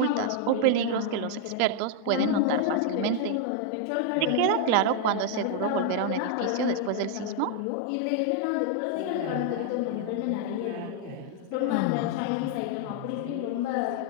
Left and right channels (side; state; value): both; different; correlation 0.00